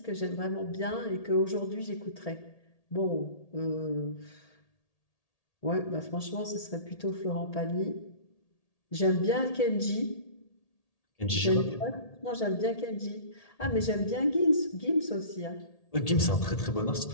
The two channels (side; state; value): right; late; 1.8 ms